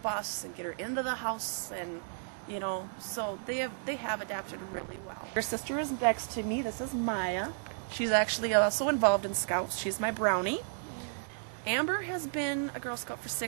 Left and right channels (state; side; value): silent; left; digital silence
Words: and get her into the house, and so they have adapted really well. Her sister is next to me. This is Maya. She's actually also involved in Scouts. She's my brownie. Amber has been a Girl Scout for